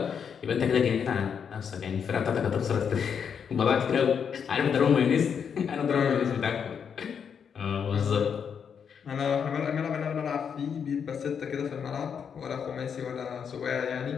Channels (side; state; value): right; quieter; 7.2 dB